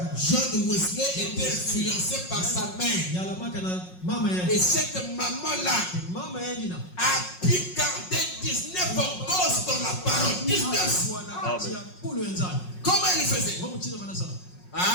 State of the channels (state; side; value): late; right; 5.5 ms